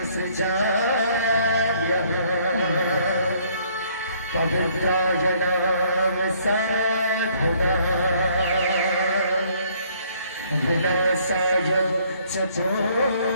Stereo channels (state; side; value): inverted; both; correlation -0.63